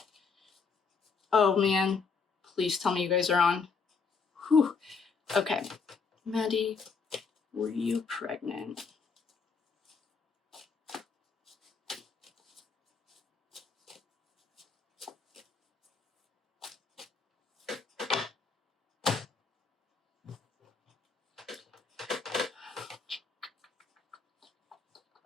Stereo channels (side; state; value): right; quieter; 5.2 dB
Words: Oh, man. Please tell me you guys are on. Whew. Okay, Maddie. Were you pregnant?